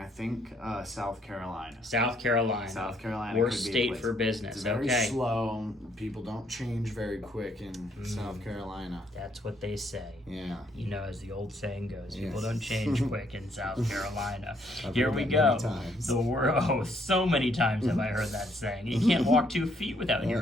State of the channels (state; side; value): normal; both; correlation 0.69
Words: think South Carolina. South Carolina. Worst could be a state place. for business. It's very Okay. slow. People don't change very quick in South Carolina. That's what they say. Yeah. You know, as the old saying goes, people Yes. don't change quick in South Carolina. I've Here heard we that go. many times. So many times have I heard that saying. You can't walk 2 feet without